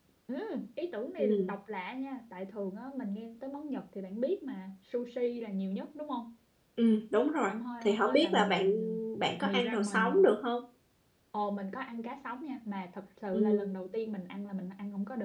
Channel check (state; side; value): identical; both; correlation 1.00